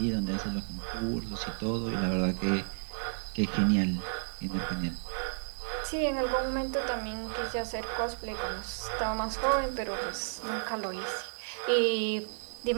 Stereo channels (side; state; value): left; silent; 56 dB below the other